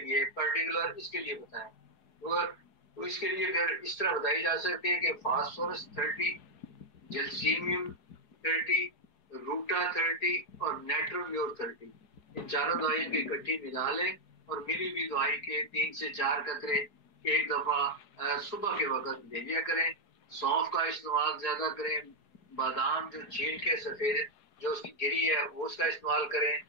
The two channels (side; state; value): right; late; 4.8 ms